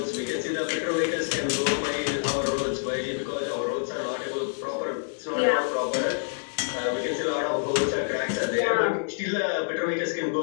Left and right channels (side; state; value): right; silent; 60 dB below the other